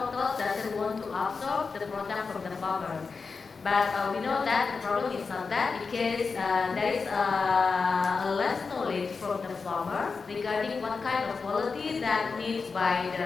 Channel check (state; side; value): quieter; right; 4.8 dB